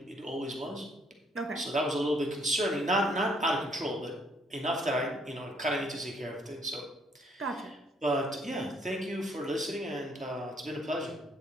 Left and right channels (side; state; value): both; normal; correlation 0.66